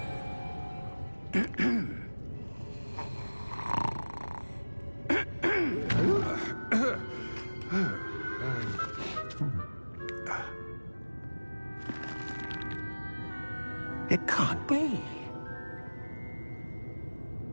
It can't be.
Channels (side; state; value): both; inverted; correlation -1.00